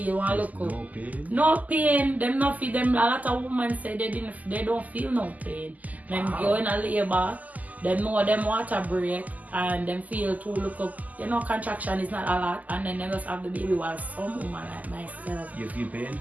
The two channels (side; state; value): left; late; 0.079 ms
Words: one look up. No pain. No pain. Them not feel them. A lot of women say they don't feel no pain. Them go in a labor them know them water break and them feel to look up, you know, contraction is not a lot, and then they just have the baby while some woman like myself. You feel pain?